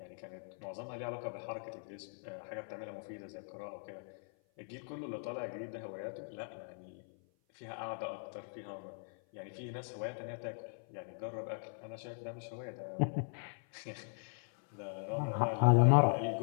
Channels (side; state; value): right; silent; 52 dB below the other